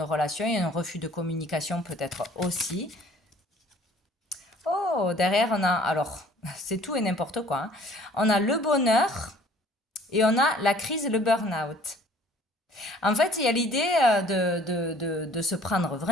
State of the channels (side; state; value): both; normal; correlation 0.54